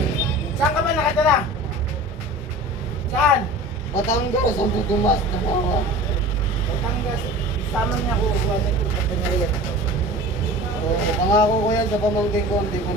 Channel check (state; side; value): normal; both; correlation 0.38